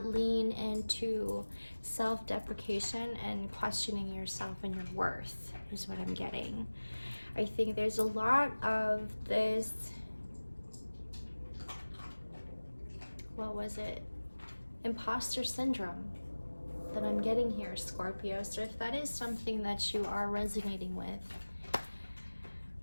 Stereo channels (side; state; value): both; inverted; correlation -1.00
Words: lean into self-deprecation and questioning yourself and your worth is what I'm getting. I think there's a lot of this, what was it? Imposter syndrome that I'm getting here, Scorpio. So if that is something that you are resonating with,